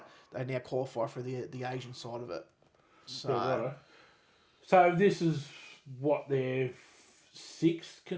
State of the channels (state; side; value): identical; both; correlation 1.00